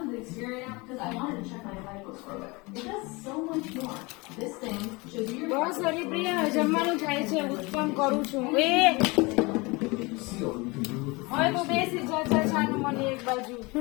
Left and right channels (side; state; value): right; quieter; 25.6 dB